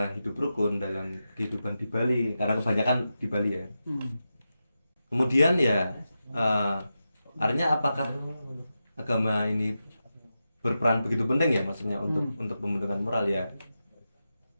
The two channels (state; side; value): inverted; both; correlation -0.90